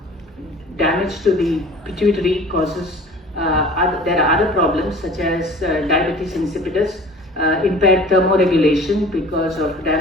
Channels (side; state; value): both; normal; correlation 0.45